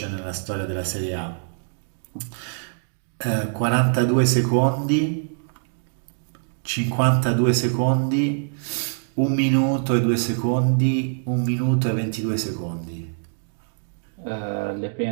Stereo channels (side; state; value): left; silent; digital silence